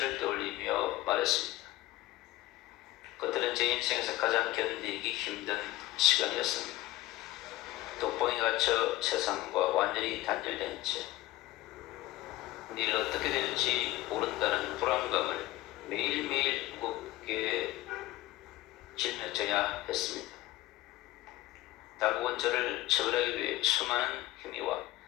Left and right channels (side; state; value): right; quieter; 17.2 dB